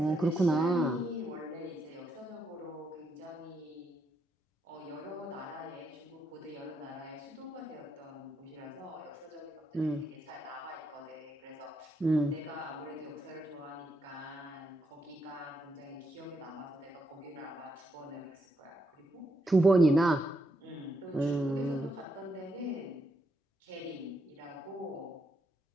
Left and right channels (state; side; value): normal; both; correlation 0.79